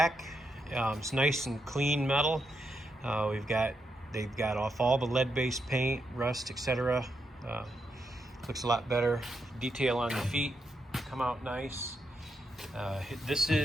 It's nice and clean metal. They've got off all the lead-based paint, rust, etc. Looks a lot better. Detail on the feet come out nice.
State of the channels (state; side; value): normal; both; correlation 0.83